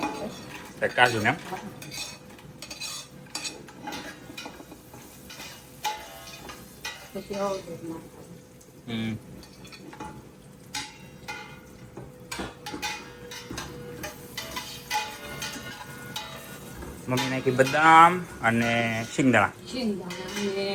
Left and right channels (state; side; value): identical; both; correlation 1.00